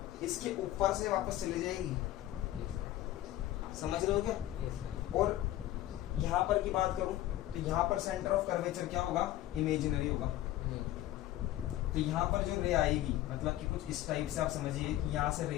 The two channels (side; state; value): right; quieter; 14.4 dB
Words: इसके ऊपर से वापस चली जाएगी, समझ रहे हो क्या? Yes, sir. और यहाँ पर की बात करूं तो यहाँ पर सेंटर ऑफ कर्वेचर क्या होगा? इमेजिनरी होगा। Hmm. तो यहाँ पर जो रे आएगी मतलब कि कुछ इस टाइप से आप समझिए कि यहाँ से